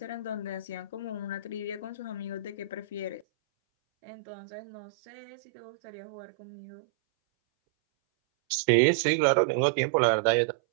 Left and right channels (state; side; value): drops out; left; at 3.2 s